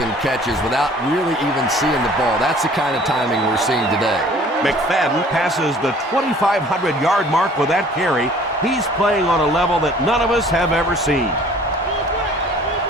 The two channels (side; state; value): both; normal; correlation 0.52